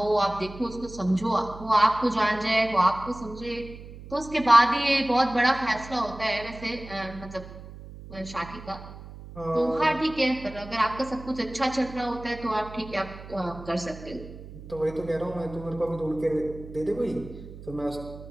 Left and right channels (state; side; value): noise; right; hum, 15 dB below the sound